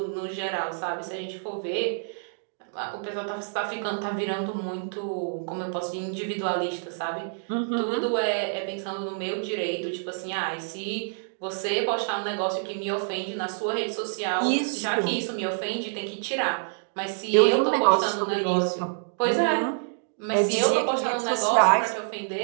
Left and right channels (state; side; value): silent; left; digital silence